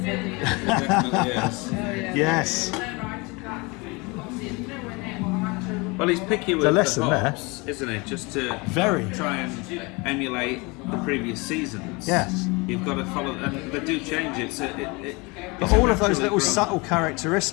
Definitely yes. Yes. Well, he's picky with The lesson the hops, isn't he? Just to try and emulate the previous seasons. Yes. You've got to follow, and they do change it. So But all of those little subtle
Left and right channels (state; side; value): quieter; right; 27.0 dB